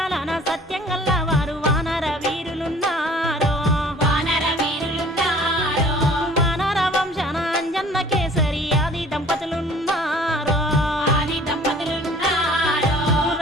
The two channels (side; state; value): both; normal; correlation 0.52